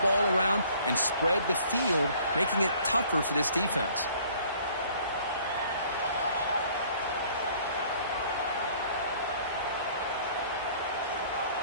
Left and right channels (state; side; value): inverted; both; correlation -0.56